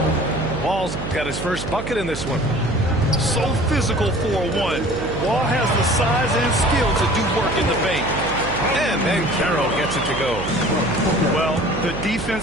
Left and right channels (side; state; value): right; noise; hum, 7 dB below the sound